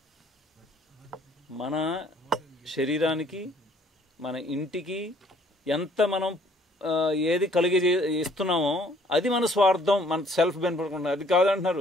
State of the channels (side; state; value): both; normal; correlation 0.60